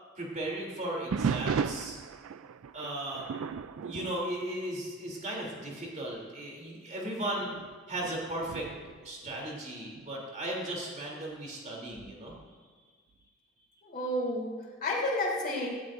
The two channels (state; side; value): normal; both; correlation 0.30